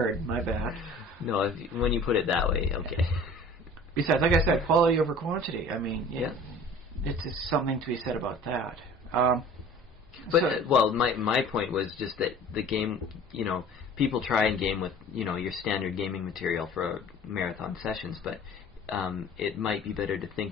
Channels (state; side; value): normal; both; correlation 0.45